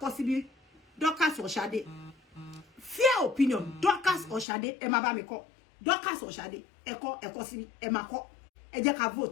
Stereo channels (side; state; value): right; drops out; at 4.5 s